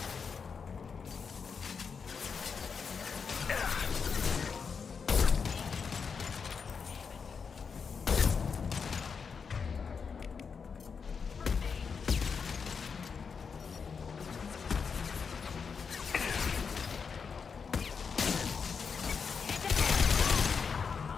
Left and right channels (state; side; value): quieter; right; 5.8 dB